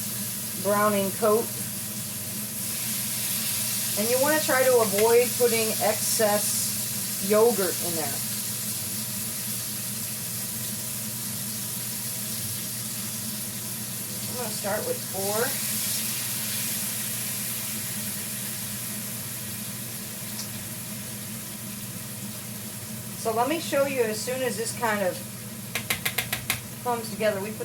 browning coat. And you want to try to avoid putting excess yogurt in there. I'm going to start with 4. So let me show you as soon as this kind of comes together. We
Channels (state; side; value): identical; both; correlation 1.00